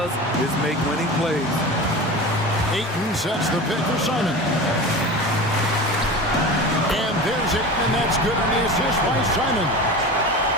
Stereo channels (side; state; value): both; normal; correlation 0.31